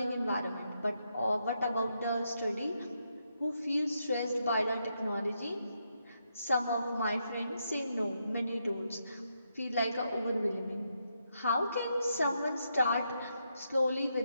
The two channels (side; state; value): both; inverted; correlation -0.81